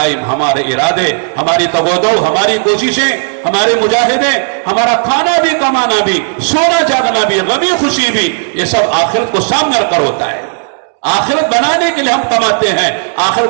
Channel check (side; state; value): left; silent; digital silence